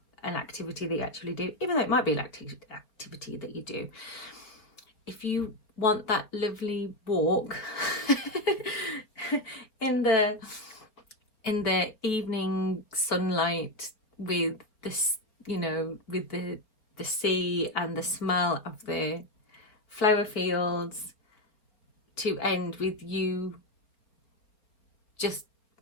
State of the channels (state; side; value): late; right; 4.1 ms